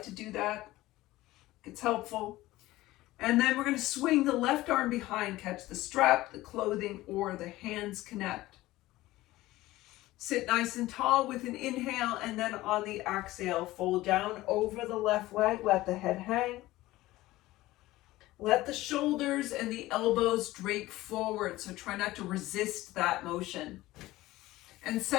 to do that. It's helpful. And then we're going to swing the left arm behind, catch the strap, the clothing, or the hands connect. Sit nice and tall with an inhale, and then on the exhale, fold down over the left leg, let the head hang. Let the shoulders and the elbows drape forward, so try not to resist that motion. And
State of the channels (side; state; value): right; quieter; 17.4 dB